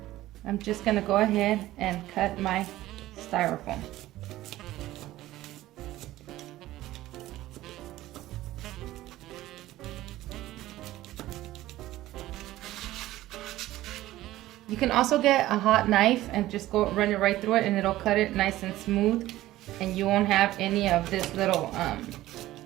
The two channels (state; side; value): quieter; left; 15.7 dB